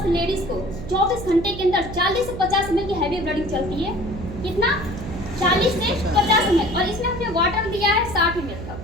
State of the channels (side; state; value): right; noise; hum, 10 dB below the sound